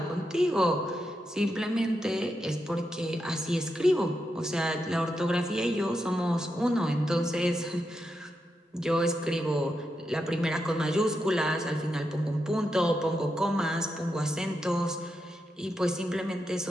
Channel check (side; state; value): both; normal; correlation 0.85